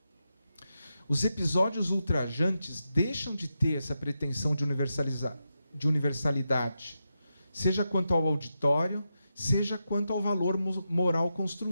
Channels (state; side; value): inverted; both; correlation -0.87